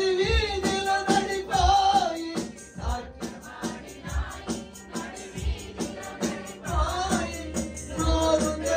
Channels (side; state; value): both; identical; correlation 1.00